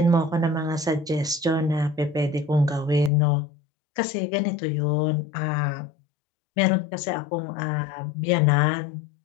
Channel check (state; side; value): drops out; right; at 3.1 s